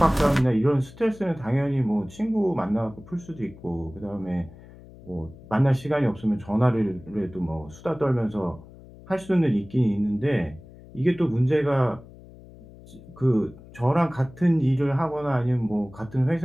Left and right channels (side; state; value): left; noise; hum, 20 dB below the sound